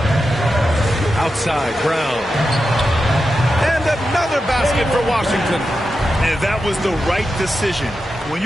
Outside, Brown. And another basket for Washington. And that was the right decision. When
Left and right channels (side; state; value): both; normal; correlation 0.89